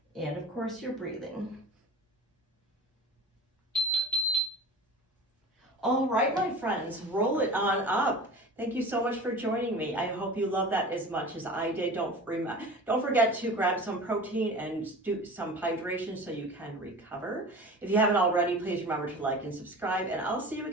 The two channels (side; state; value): both; normal; correlation 0.36